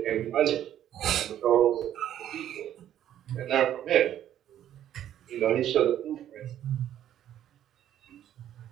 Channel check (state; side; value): quieter; left; 11.2 dB